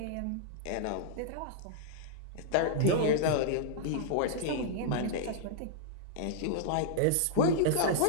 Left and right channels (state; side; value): different; both; correlation -0.01